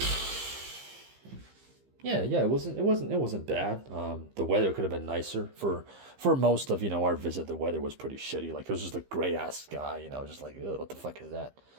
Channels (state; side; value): late; left; 15 ms